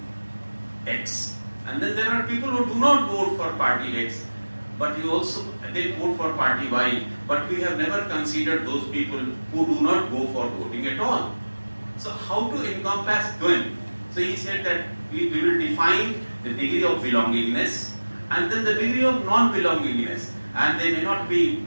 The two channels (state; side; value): inverted; both; correlation -1.00